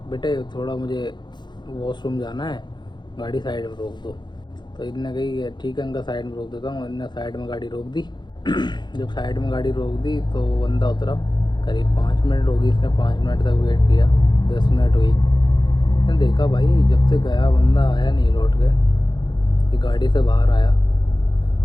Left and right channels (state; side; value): late; right; 0.21 ms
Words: बेटे थोड़ा मुझे वॉशरूम जाना है, गाड़ी साइड में रोक दो। तो इनने कही ठीक है अंकल साइड में रोक देता हूँ। इनने साइड में गाड़ी रोक दी। जब साइड में गाड़ी रोक दी तो बंदा उतरा। करीब 5 मिनट होगी, इसने 5 मिनट तक वेट किया, 10 मिनट हुई। मैंने देखा भाई जब से गया बंदा आया नहीं लौट के। ये गाड़ी से बाहर आया,